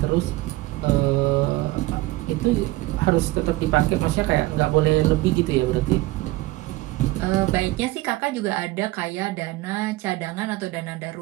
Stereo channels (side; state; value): left; quieter; 19.1 dB